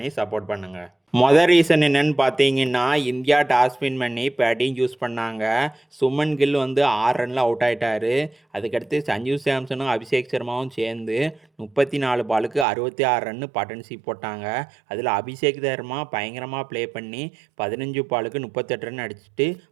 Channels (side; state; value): left; drops out; at 12.7 s